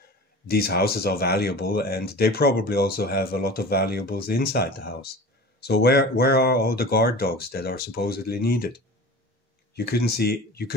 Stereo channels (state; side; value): normal; both; correlation 0.36